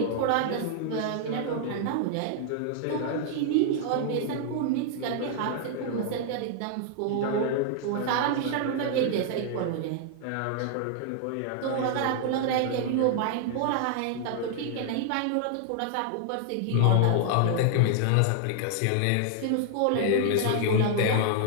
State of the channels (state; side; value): different; both; correlation 0.00